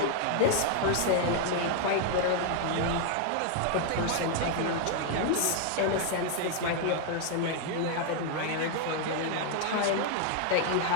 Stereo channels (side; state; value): both; different; correlation 0.00